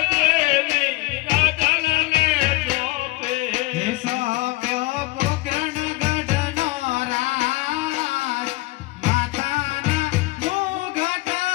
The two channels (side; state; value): right; quieter; 21.7 dB